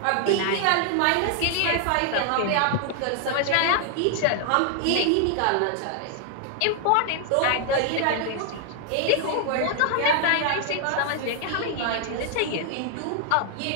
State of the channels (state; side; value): different; both; correlation 0.00